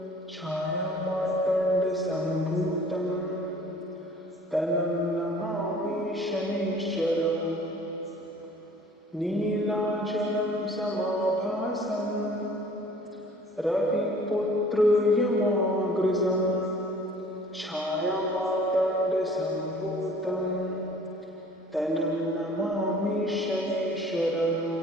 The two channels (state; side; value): normal; both; correlation 0.51